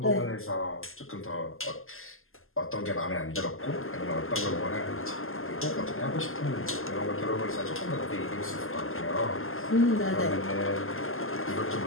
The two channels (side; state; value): right; late; 0.61 ms